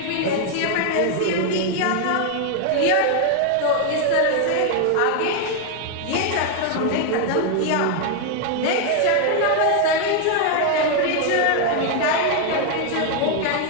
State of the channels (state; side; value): different; both; correlation 0.01